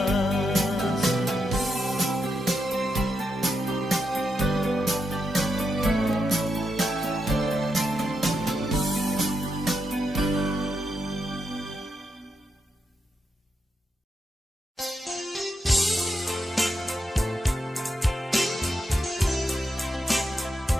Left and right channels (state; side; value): normal; both; correlation 0.84